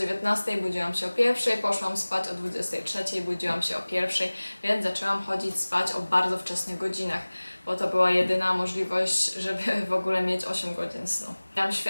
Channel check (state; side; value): inverted; both; correlation -1.00